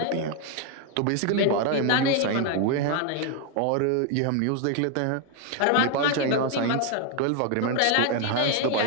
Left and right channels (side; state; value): both; different; correlation 0.01